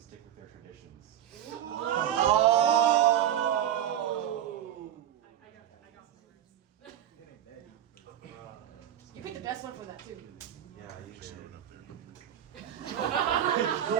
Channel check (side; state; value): left; quieter; 10.9 dB